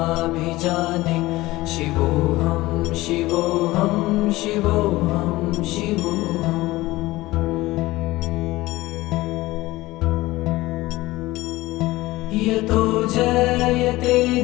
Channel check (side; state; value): right; quieter; 18.8 dB